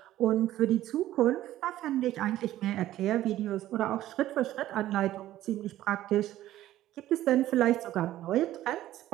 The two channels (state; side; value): quieter; left; 14.0 dB